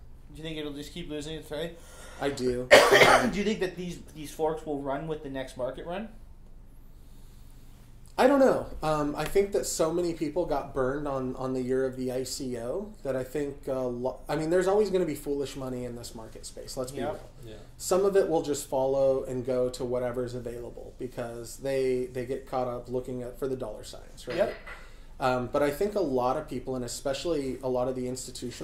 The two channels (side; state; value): both; identical; correlation 1.00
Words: you think it'll just keep losing its way? I do. Do you think that these forks will run with the next market run? I don't know. I think that so many people got burned on the year of the ICO that I think, there's always going to be foolish money in this market space. Let's be real. Yeah. Some of it will just follow and go to whatever's available because they get caught up looking for the dollar signs, right? Yep. But I think a lot of people, and especially a lot of the